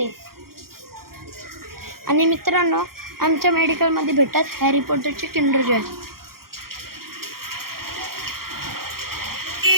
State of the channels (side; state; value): left; late; 0.93 ms